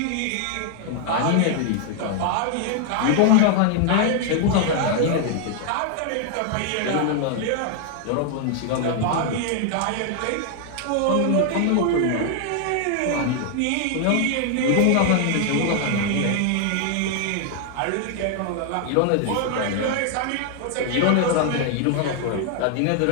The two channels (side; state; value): both; different; correlation 0.00